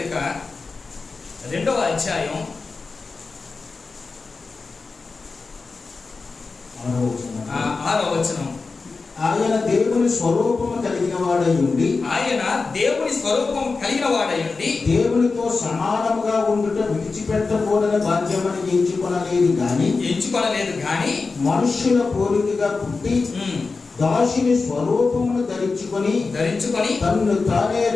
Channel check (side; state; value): right; quieter; 4.2 dB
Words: 2వ అధ్యాయం 6వ వచనం. ఆయన దేవుని స్వరూపము కలిగిన వాడై ఉండి దేవునితో సమానముగా ఉండుట విడిచిపెట్టకూడని బాధ్యమని ఎంచుకొనలేదు గాని మనుష్యుల పోలికగా పుట్టి దాసుని స్వరూపమును ధరించుకొని తన్ను తానే